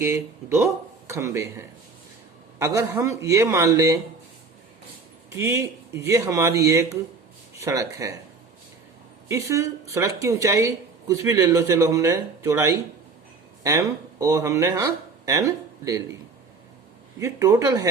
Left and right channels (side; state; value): left; quieter; 4.4 dB